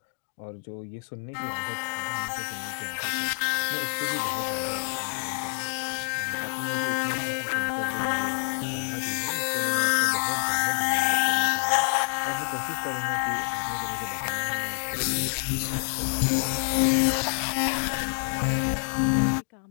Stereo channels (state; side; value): silent; right; 58 dB below the other